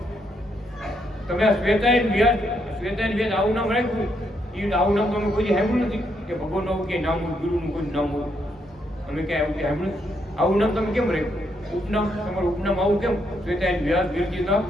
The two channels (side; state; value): both; normal; correlation 0.76